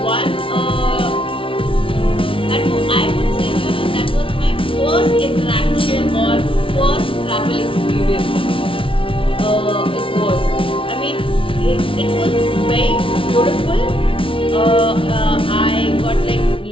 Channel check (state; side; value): late; right; 0.25 ms